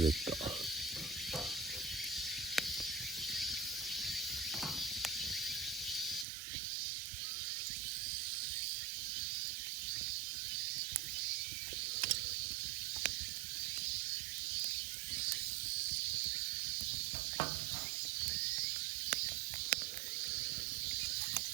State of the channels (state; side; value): drops out; left; at 6.2 s